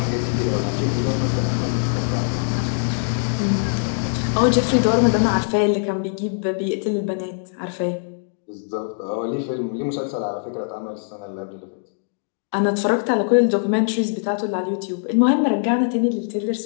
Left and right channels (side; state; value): right; silent; digital silence